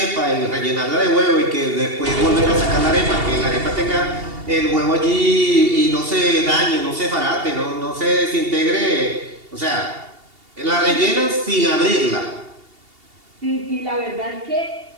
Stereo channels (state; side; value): late; left; 2.8 ms